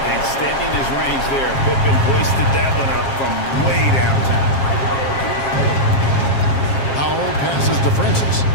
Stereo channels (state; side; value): late; right; 7.4 ms